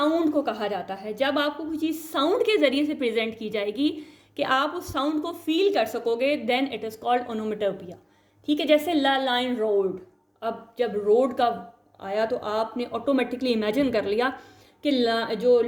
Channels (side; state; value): both; identical; correlation 1.00